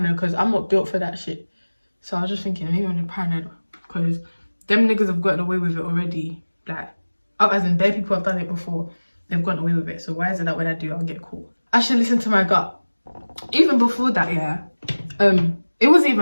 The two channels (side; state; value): both; inverted; correlation -1.00